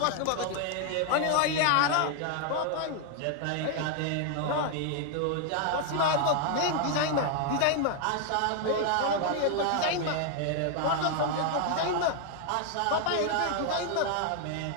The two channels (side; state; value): both; different; correlation 0.00